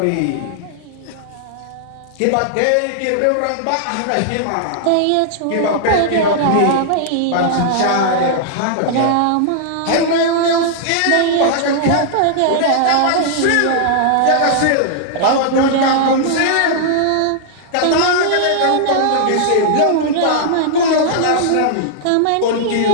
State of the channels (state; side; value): different; both; correlation -0.01